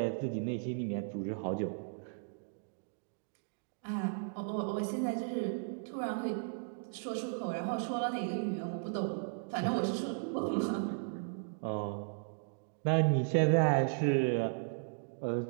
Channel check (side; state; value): left; silent; digital silence